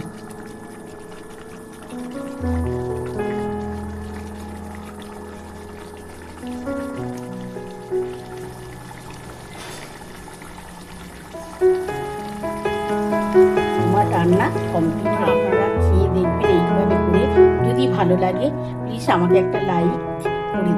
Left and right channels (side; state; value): both; identical; correlation 1.00